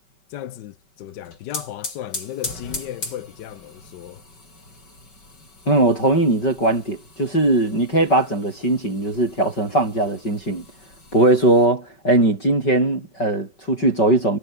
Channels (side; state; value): right; late; 5.3 ms